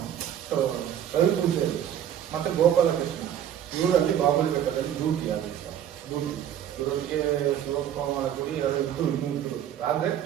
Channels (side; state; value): left; quieter; 10.2 dB